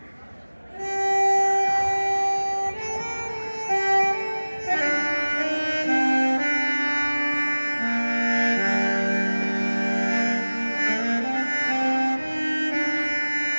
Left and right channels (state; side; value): inverted; both; correlation -1.00